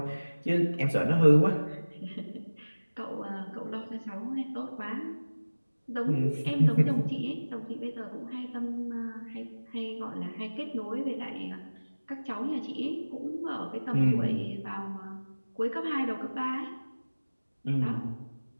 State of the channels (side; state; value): both; inverted; correlation -1.00